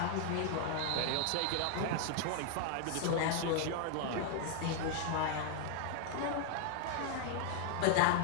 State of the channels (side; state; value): both; different; correlation 0.00